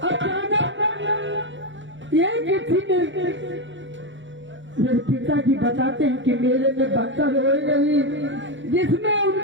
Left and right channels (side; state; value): left; late; 0.55 ms